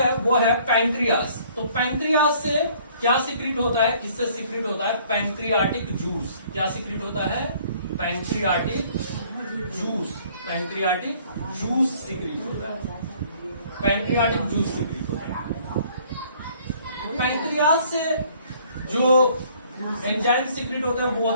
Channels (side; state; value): both; inverted; correlation -0.58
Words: वो है पैंक्रियास। तो पैंक्रियास से क्या सीक्रेट होता है? इससे सीक्रेट होता है पैंक्रियाटिक जूस। क्या सीक्रेट होता है? Pancreatic juice. Pancreatic juice secrete होता है। पैंक्रियाटिक जूस सीक्रेट होता है। पैंक्रियास से जो एंजाइम सीक्रेट होता है वो